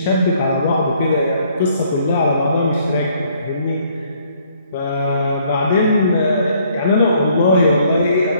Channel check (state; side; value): inverted; both; correlation -0.64